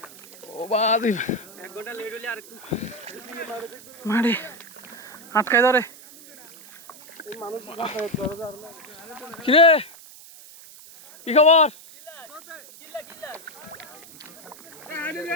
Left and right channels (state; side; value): noise; right; hiss, 19 dB below the sound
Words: ও বাদি মাটি আটকায় ধরে। কিরে কি খবর